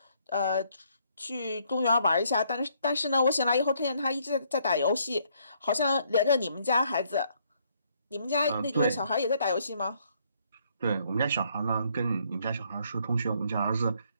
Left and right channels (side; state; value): both; inverted; correlation -0.69